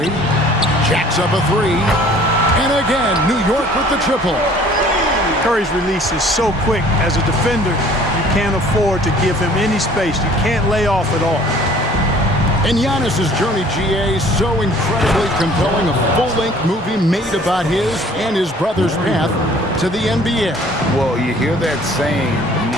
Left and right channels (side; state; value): both; normal; correlation 0.52